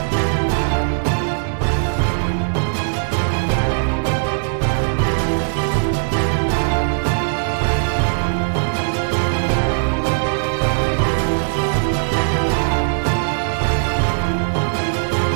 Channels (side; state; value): left; silent; digital silence